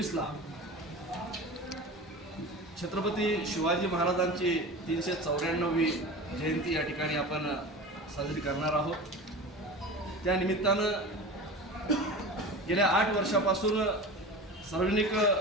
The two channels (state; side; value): normal; both; correlation 0.32